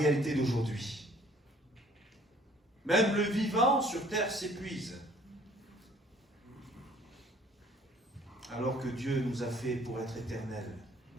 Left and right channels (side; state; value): both; normal; correlation 0.57